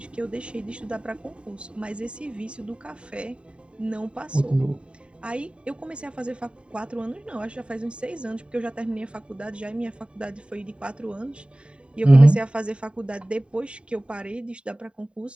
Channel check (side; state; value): left; late; 0.056 ms